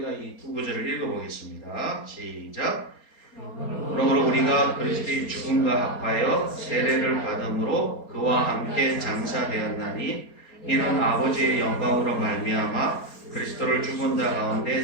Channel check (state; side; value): late; right; 4.3 ms